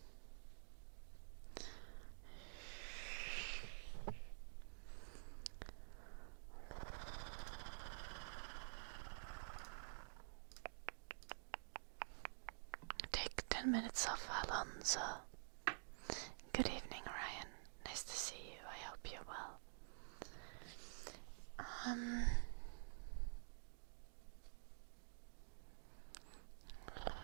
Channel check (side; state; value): left; silent; digital silence